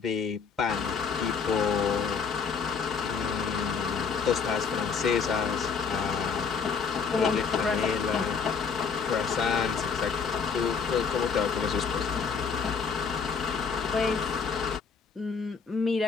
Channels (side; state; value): right; quieter; 5.8 dB